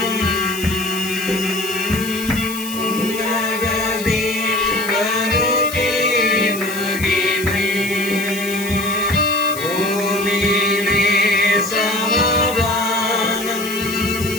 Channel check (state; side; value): noise; left; hiss, 10 dB below the sound